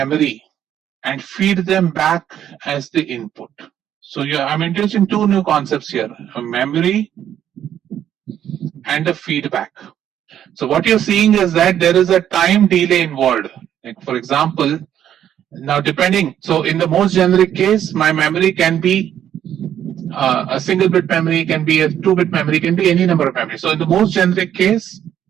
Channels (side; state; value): left; quieter; 10.3 dB